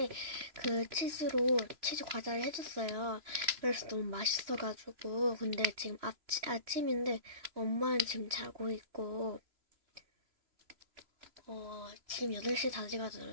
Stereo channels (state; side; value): late; left; 3.0 ms